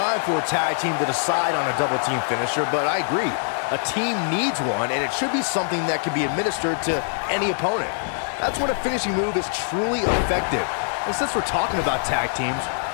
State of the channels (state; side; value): silent; right; digital silence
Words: for a tag team to decide on a double team finisher, but I agree. A team needs one, and it should be something that can be administered to any opponent. That's when a finishing move is truly effective. And since we're talking about tag teams,